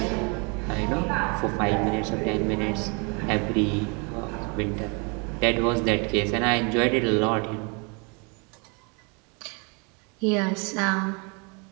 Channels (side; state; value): left; quieter; 32.7 dB